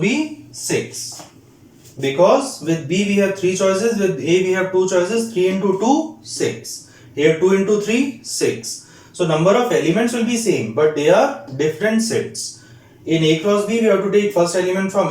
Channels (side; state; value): both; identical; correlation 1.00